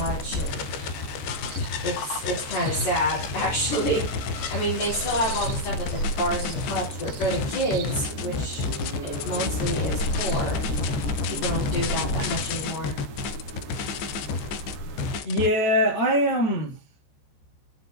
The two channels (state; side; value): late; right; 14 ms